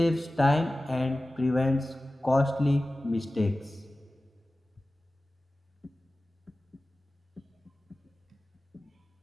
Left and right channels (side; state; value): both; normal; correlation 0.96